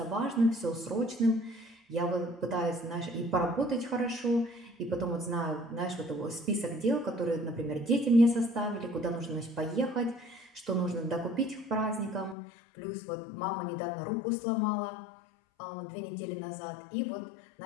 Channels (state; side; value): drops out; right; at 12.4 s